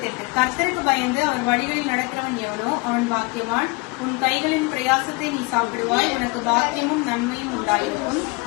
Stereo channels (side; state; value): right; quieter; 26.1 dB